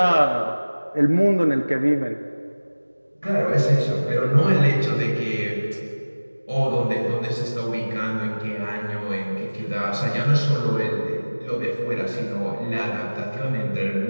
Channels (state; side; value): inverted; both; correlation -1.00